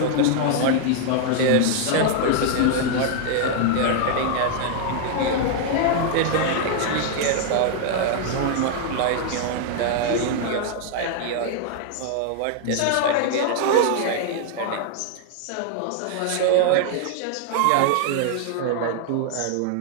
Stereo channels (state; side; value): different; both; correlation 0.00